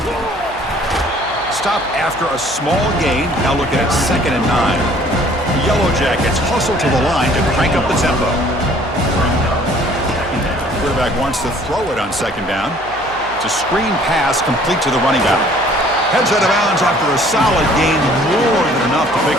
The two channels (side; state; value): right; noise; hum, 21 dB below the sound